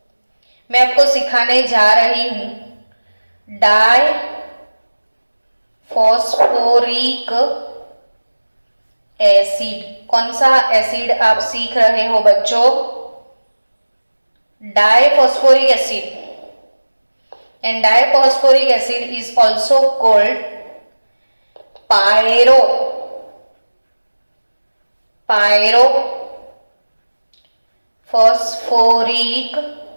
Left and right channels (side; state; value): both; inverted; correlation -1.00